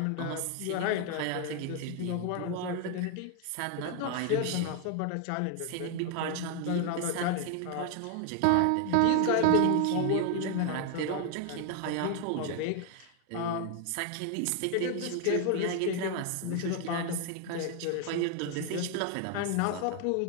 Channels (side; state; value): both; different; correlation 0.01